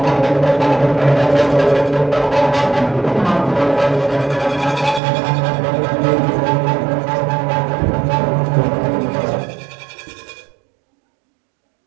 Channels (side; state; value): left; drops out; at 5.0 s